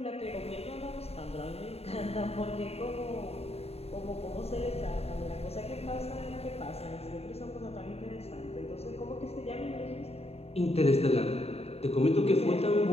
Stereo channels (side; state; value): right; late; 0.30 ms